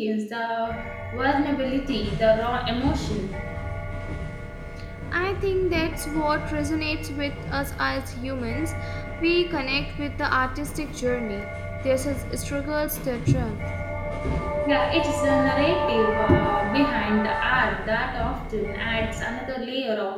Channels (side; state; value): both; identical; correlation 1.00